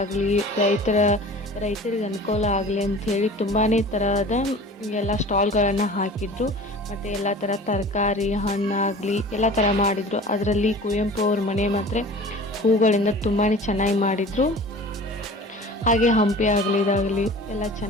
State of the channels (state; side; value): normal; both; correlation 0.41